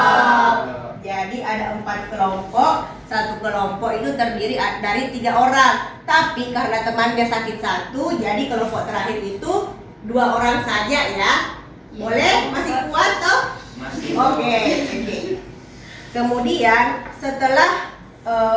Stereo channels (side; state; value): both; identical; correlation 1.00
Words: Jadi ada 4 kelompok. Satu kelompok itu terdiri dari 3 orang. Tapi karena temannya sakit 1, jadi kelompok terakhir itu 2 orang saja, ya. Boleh? Masih kuat toh? Masih. Oke. Kemudian setelah